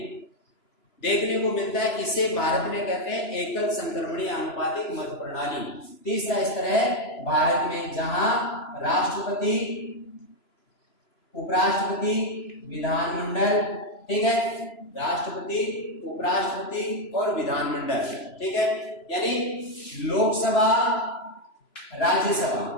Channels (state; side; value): late; right; 3.0 ms